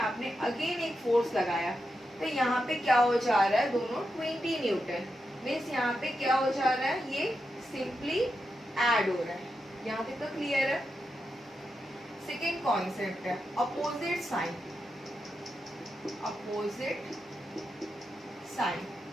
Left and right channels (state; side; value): normal; both; correlation 0.87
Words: अगेन एक फोर्स लगाया, तो यहाँ पे क्या हो जा रहा है, दोनों 20 न्यूटन। मीन्स यहाँ पे क्या हो जा रहा है, ये सिंपली ऐड हो रहा है। यहाँ तक तो क्लियर है। सेकेंड कॉन्सेप्ट है opposite sign. Opposite sign